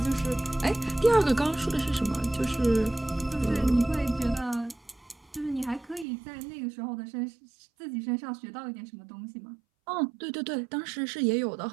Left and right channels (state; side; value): drops out; left; at 6.1 s